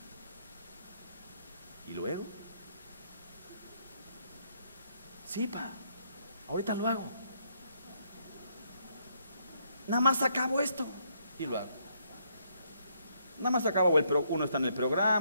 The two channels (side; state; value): both; inverted; correlation -0.72